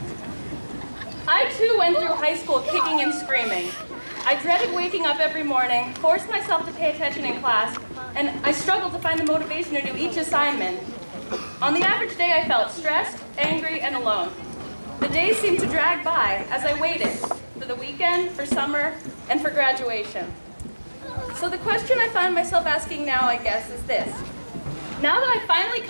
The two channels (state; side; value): inverted; both; correlation -1.00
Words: I too went through high school kicking and screaming. I dreaded waking up every morning, forced myself to pay attention in class, and I struggled to find the motivation to do each assignment. On the average day, I felt stressed, angry, and alone. The days seemed to drag by as I waited for the weekend, for summer, and for graduation. So the question I find myself asking now, I guess, is this. Now that I've finally